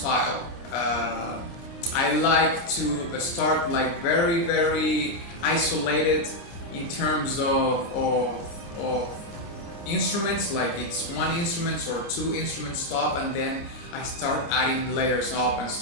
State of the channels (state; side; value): late; right; 29 ms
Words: I like to start like very, very isolated in terms of instruments, like it's one instrument or two instruments top, and then I start adding layers up and